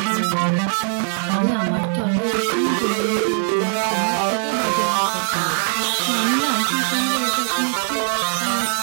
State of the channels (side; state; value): left; silent; 55 dB below the other